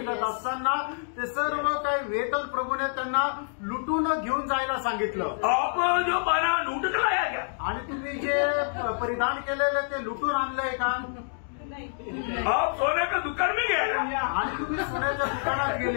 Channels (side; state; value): right; silent; digital silence